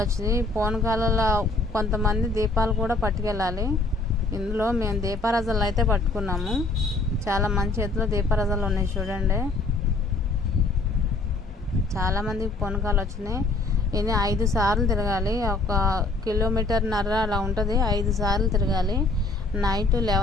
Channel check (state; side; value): quieter; right; 3.3 dB